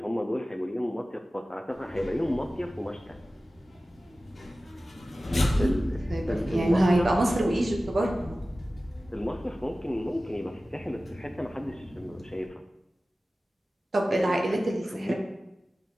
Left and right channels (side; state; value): both; normal; correlation 0.96